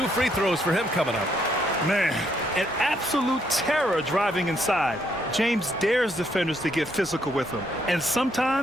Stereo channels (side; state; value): both; normal; correlation 0.72